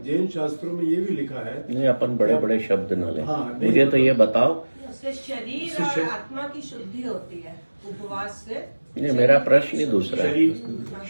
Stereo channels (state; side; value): inverted; both; correlation -1.00